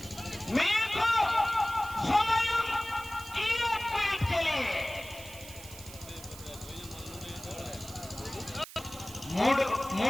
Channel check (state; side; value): noise; right; hiss, 16 dB below the sound